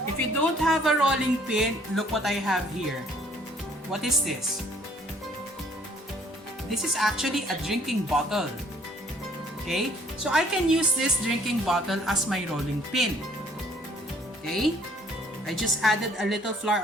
If you don't have a rolling pin, look what I have here. What is this? This is actually a drinking bottle. Okay? So I can use this drinking bottle as my rolling pin. Okay? I just added a little flour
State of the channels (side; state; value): both; normal; correlation 0.60